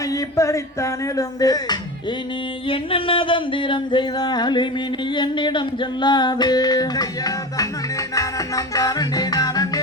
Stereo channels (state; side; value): normal; both; correlation 0.27